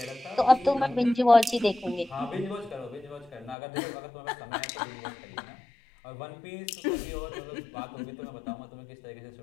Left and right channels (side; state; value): right; drops out; at 3.6 s